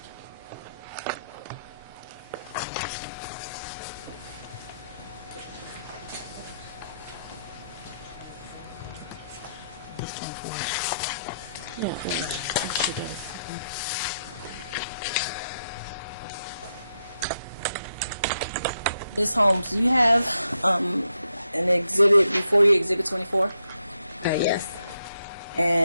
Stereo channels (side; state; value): both; inverted; correlation -0.80